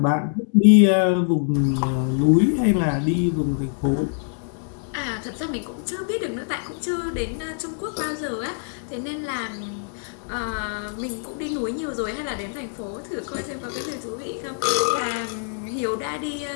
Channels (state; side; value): silent; right; digital silence